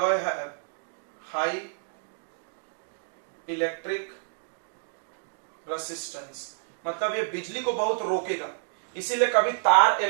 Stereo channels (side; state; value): left; silent; digital silence